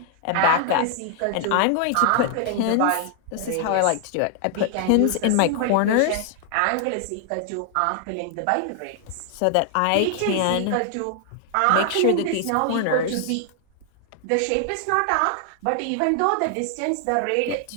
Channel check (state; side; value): different; both; correlation 0.00